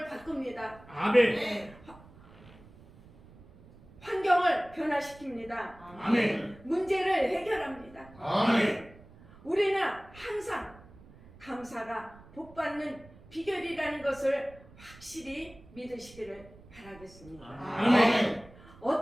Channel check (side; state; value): right; noise; rumble, 22 dB below the sound